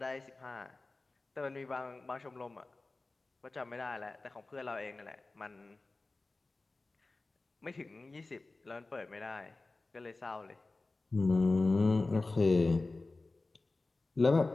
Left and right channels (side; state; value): right; quieter; 3.3 dB